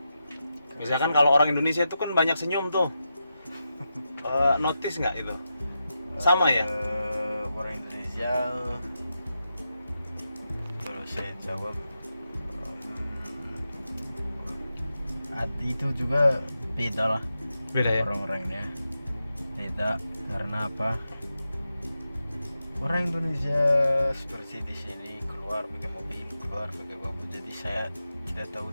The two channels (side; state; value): both; inverted; correlation -0.89